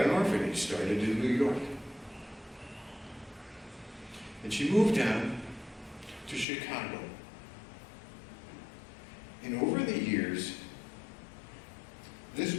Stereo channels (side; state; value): right; drops out; at 6.5 s